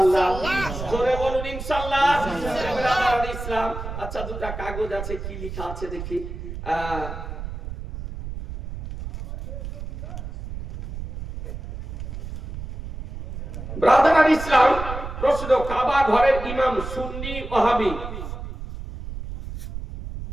জোরে বলুন ইনশাআল্লাহ। ব্রাদার ইসলাম, আচ্ছা দুটো কাগজ আছে, কি লেখা আছে দেখি। ব্রাদার ইসলাম, প্রশ্ন, কাবা ঘরের ইমাম সুন্নি ওয়াহাবি,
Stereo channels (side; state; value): right; noise; rumble, 8 dB below the sound